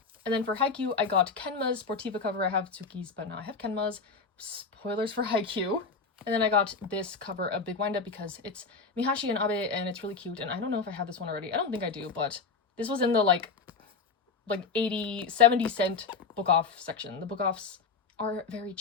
And then for Haikyuu, I got Kenma's Sportiva cover. I have Tsuki's, but now I have Kenma's. Spoilers for Haikyuu. And then I got this cover of Big Wind Up because it's Mihashi and Abe, and it's really cute. And I don't know if I have this one already. I don't think I do, but this was in the like 80, 70 cent book off section. The book offs are very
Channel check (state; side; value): quieter; right; 4.8 dB